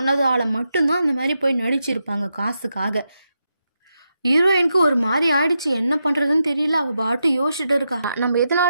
மட்டும்தான் அந்த மாதிரி போய் நடிச்சிருப்பாங்க காசுக்காக. ஹீரோயினுக்கு ஒரு மாதிரி ஆயிடுச்சு, என்ன பண்ணுறதுன்னு தெரியல. அவள் பாட்டு யோசிச்சுட்டு இருக்கா, நம்ம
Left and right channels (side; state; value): both; inverted; correlation -0.86